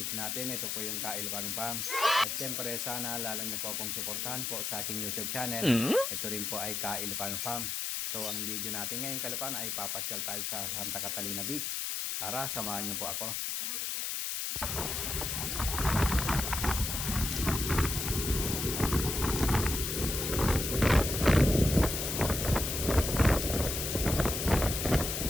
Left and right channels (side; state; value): left; noise; hiss, 2 dB below the sound